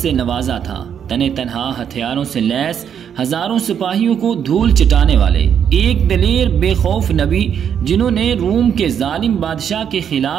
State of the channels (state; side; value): quieter; left; 8.4 dB